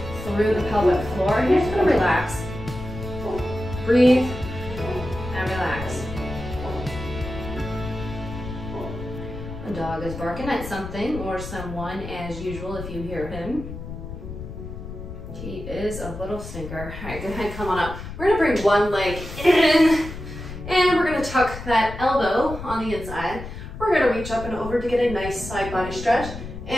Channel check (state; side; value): noise; left; rumble, 10 dB below the sound